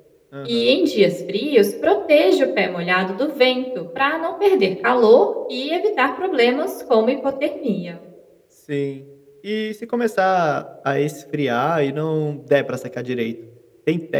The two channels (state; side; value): identical; both; correlation 1.00